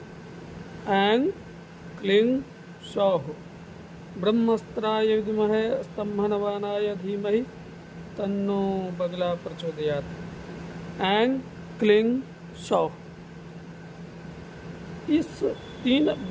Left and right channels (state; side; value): identical; both; correlation 1.00